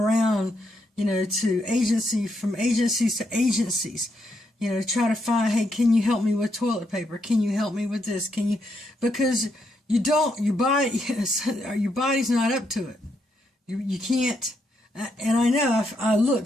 to from agencies to agencies, try to find, hey, can you help me with toilet paper? Can you help me with this? Because your body's not up to it. You can't, and I know I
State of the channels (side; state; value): both; normal; correlation 0.79